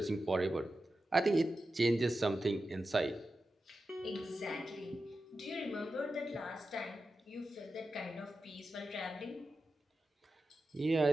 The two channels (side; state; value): both; normal; correlation 0.91